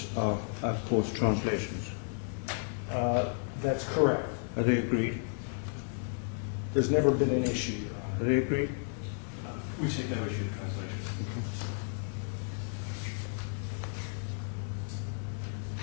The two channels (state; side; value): silent; right; 56 dB below the other